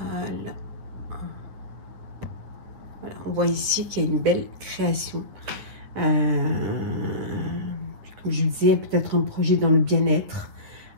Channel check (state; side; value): late; left; 9.5 ms